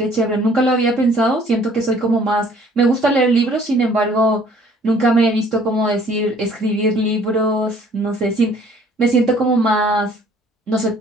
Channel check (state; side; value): normal; both; correlation 0.57